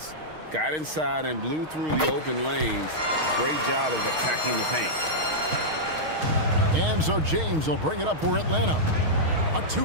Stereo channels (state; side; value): late; left; 6.4 ms